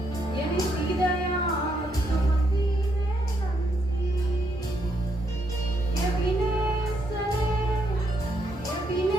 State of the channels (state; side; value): normal; both; correlation 0.76